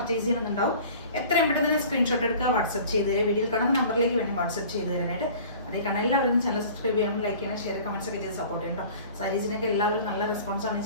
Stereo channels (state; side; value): inverted; both; correlation -0.45